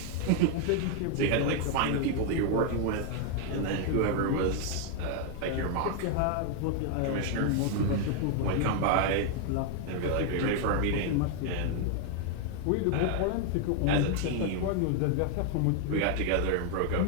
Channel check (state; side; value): different; both; correlation 0.00